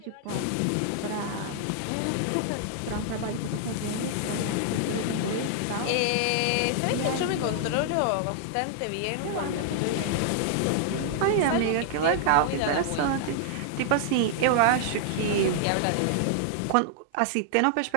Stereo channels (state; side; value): different; both; correlation -0.01